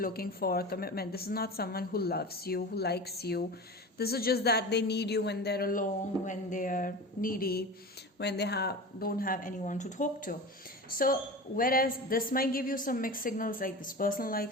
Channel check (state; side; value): normal; both; correlation 0.31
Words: for commitment. This is not someone who loves you, who likes you. This is just that they need you when they're alone, when they're needy, when they don't have anyone to talk to. So whereas this might give you some mixed signals, like this person